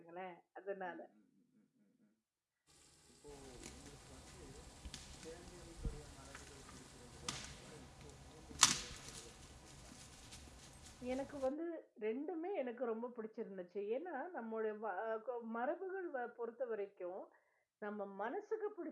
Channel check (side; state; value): both; identical; correlation 1.00